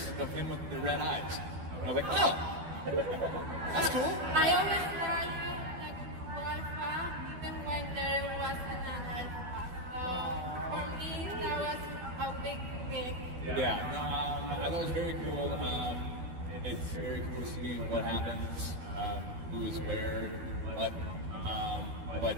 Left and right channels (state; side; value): late; left; 12 ms